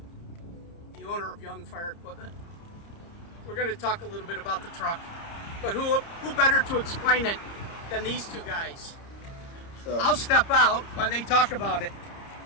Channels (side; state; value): right; late; 30 ms